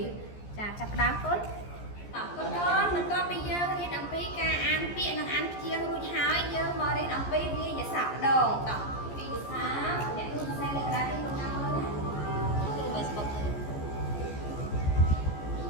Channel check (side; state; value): right; late; 14 ms